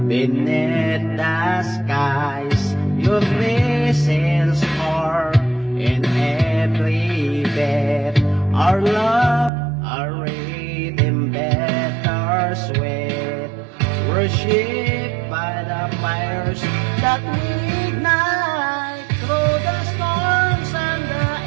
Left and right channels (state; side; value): drops out; left; at 9.5 s